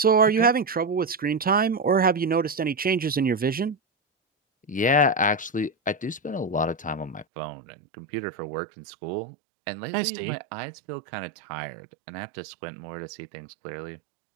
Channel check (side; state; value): left; drops out; at 7.2 s